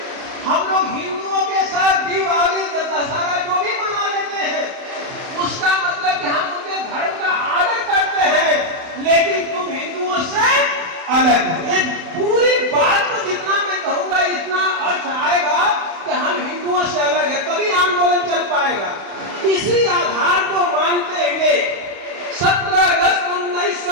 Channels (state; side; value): late; left; 31 ms